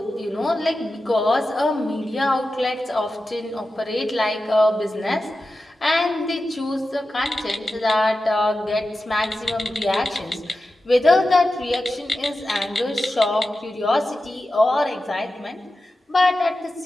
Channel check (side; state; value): both; normal; correlation 0.92